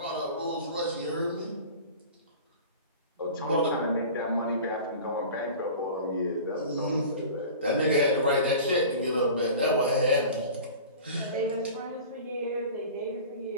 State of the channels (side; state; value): both; inverted; correlation -0.38